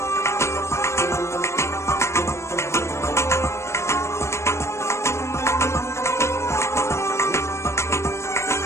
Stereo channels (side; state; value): right; late; 0.13 ms